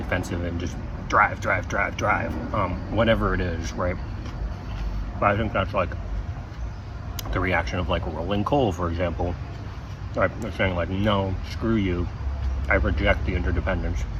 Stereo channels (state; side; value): identical; both; correlation 1.00